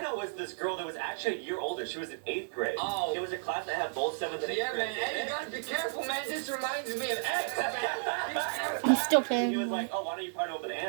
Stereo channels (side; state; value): left; silent; digital silence